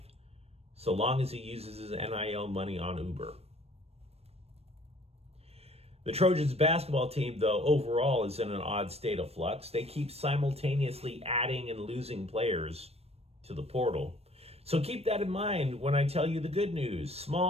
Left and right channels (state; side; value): late; left; 0.29 ms